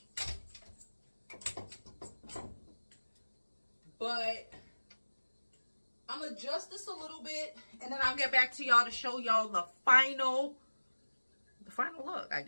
but I'm going to adjust this a little bit, and then I'll get back to y'all to show y'all the final look, I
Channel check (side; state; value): both; inverted; correlation -1.00